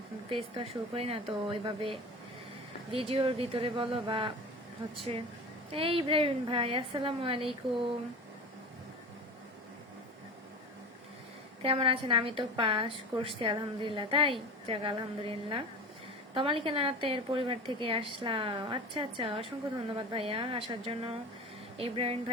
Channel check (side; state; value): both; normal; correlation 0.32